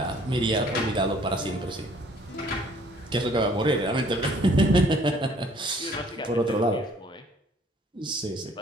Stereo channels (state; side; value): normal; both; correlation 0.59